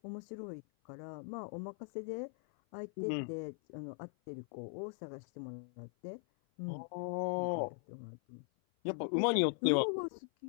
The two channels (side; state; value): right; silent; 51 dB below the other